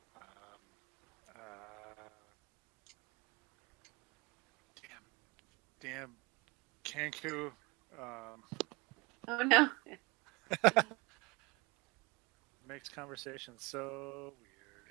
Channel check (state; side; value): quieter; left; 26.1 dB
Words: Damn Kenku. Oh no. Makes conversation so